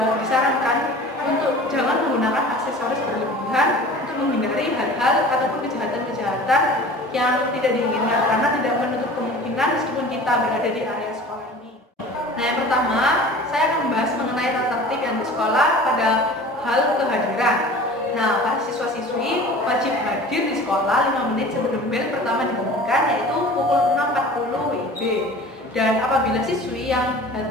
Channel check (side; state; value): both; normal; correlation 0.41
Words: disarankan untuk jangan menggunakan aksesoris berlebihan untuk menghindari hal-hal ataupun kejahatan-kejahatan yang tidak diinginkan karena tidak menutup kemungkinan meskipun kita berada di area sekolah ini. Nah, yang pertama saya akan membahas mengenai tata tertib yang di sekolah pada hal kehadiran. Nah, para siswa-siswi wajib hadir di sekolah 5 menit sebelum bel pertama dibunyikan yaitu pukul 6.40 WIB. Dan apabila siswi yang